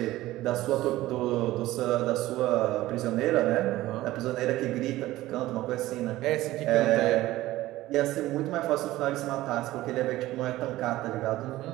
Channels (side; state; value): left; quieter; 16.5 dB